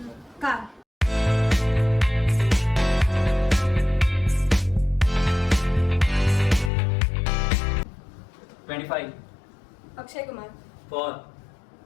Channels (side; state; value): right; drops out; at 6.7 s